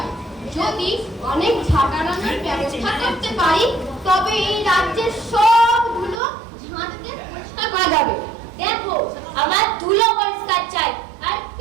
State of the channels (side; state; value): left; drops out; at 6.2 s